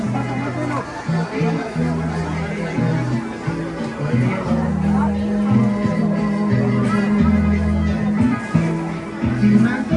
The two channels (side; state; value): both; identical; correlation 1.00